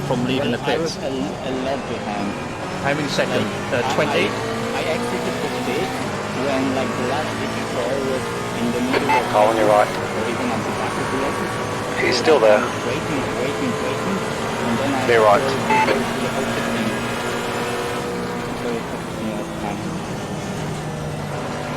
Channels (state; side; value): identical; both; correlation 1.00